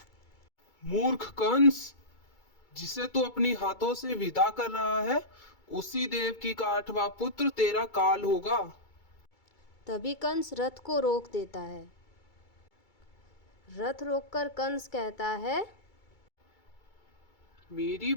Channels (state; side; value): late; right; 2.3 ms